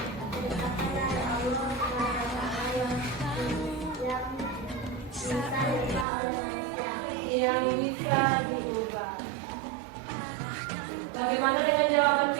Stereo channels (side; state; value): left; drops out; at 6.1 s